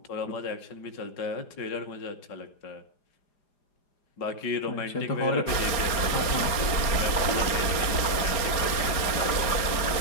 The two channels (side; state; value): right; late; 4.9 ms